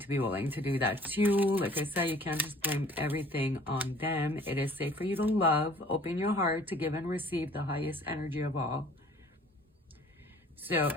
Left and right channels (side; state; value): both; normal; correlation 0.52